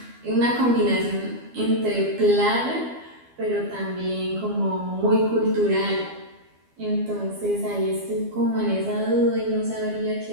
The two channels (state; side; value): late; left; 12 ms